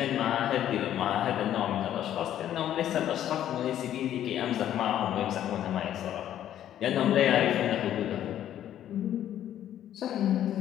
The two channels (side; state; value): right; quieter; 11.3 dB